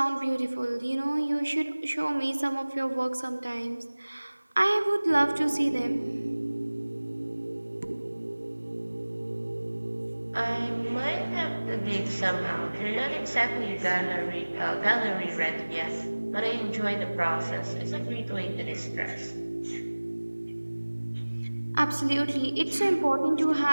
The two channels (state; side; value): inverted; both; correlation -1.00